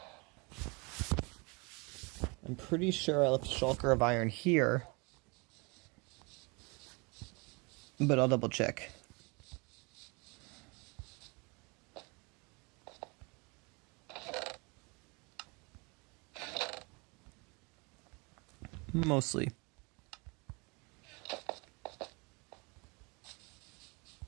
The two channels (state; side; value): quieter; left; 29.3 dB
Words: I'm pretty sure I left a shulker of iron here. But I'll double check. Mostly.